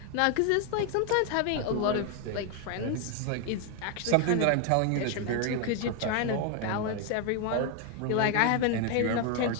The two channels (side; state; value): both; different; correlation 0.01